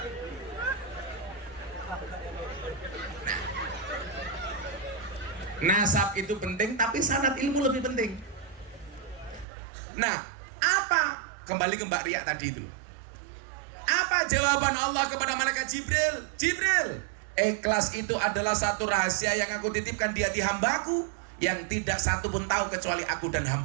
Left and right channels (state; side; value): drops out; left; at 9.5 s